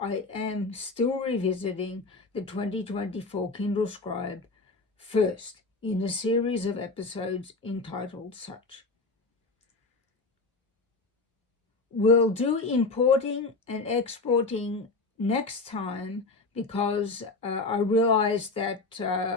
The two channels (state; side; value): quieter; right; 3.6 dB